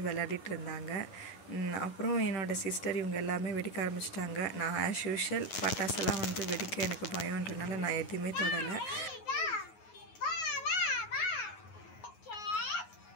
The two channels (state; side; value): late; right; 9.4 ms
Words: விளையாடிட்டு இருந்தாங்க. அப்புறம் என்னோடய சிஸ்டர் இவங்க எல்லாமே வெடிக்க ஆரம்பிச்சிட்டாங்க. நான் ஆஸ் யூஷுவல் பட்டாசெல்லாம் வெடிக்க எனக்கு பயம்ன்றனால நான் எதுவுமே தொடலை.